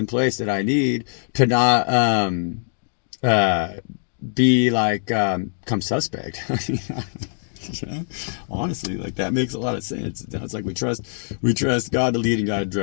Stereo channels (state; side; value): silent; right; digital silence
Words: place that I need to not be like come suspect. Honestly, like that makes a lot of sense. It's like we trust God to lead and God to